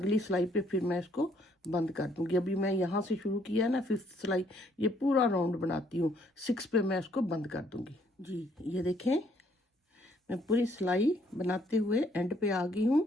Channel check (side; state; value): both; normal; correlation 0.67